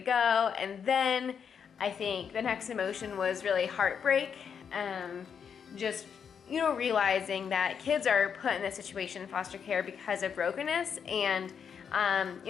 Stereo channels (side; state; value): right; quieter; 7.2 dB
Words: And then I think the next emotion was really heartbreak. Just, you know, realizing that kids are put in this situation in foster care because of brokenness. And,